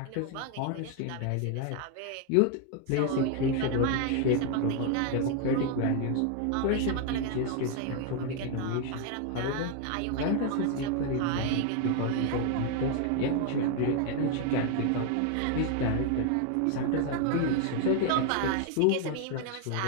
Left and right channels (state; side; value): different; both; correlation 0.01